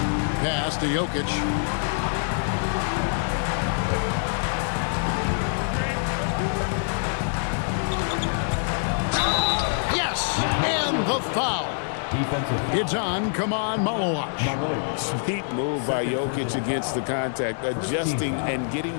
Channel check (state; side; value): silent; right; digital silence